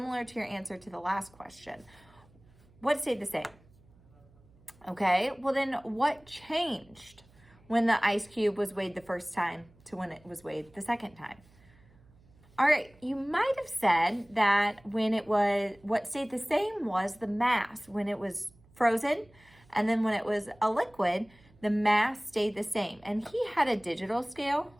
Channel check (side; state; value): right; noise; hum, 28 dB below the sound